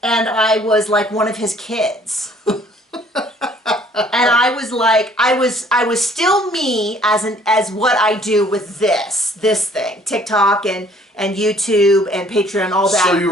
and I was like one of his kids. And I was like, I was still me as what I do with this thing, TikTok and YouTube and Patreon, all that. So you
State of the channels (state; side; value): normal; both; correlation 0.58